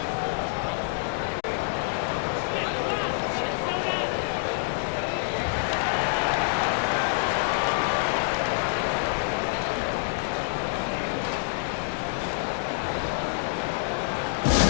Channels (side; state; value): right; silent; digital silence